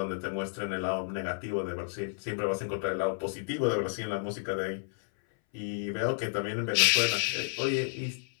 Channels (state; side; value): silent; right; 57 dB below the other